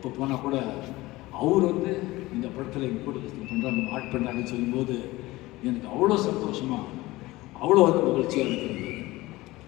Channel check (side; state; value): right; quieter; 19.4 dB